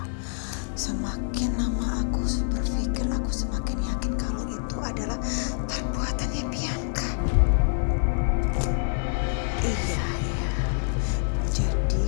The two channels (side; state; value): right; silent; digital silence